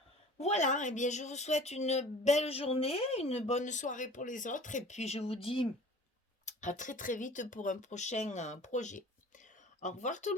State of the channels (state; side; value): normal; both; correlation 0.44